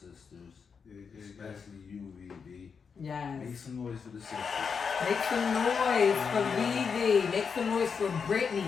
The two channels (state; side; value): quieter; right; 6.0 dB